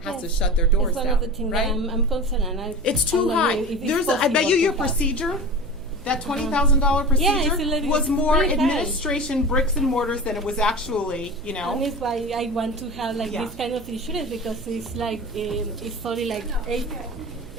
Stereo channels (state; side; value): noise; right; hum, 18 dB below the sound